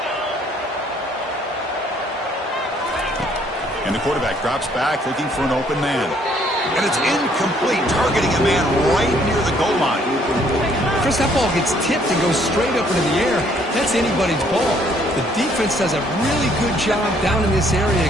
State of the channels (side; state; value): both; normal; correlation 0.64